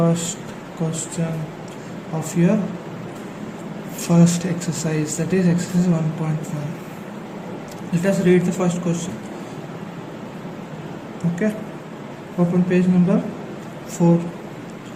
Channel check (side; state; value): both; identical; correlation 1.00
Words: question of your first exercise, that is exercise 1.1. Let us read the first question. Okay, open page number 4